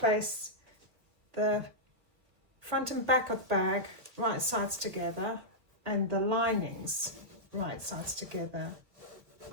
the front and back of the bag right sides together and the linings right sides together.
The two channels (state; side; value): late; left; 1.5 ms